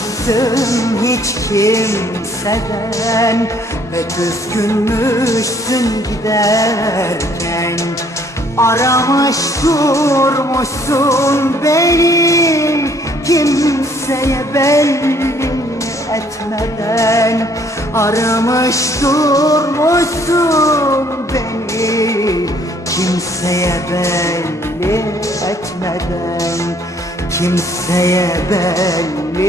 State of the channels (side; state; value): both; normal; correlation 0.62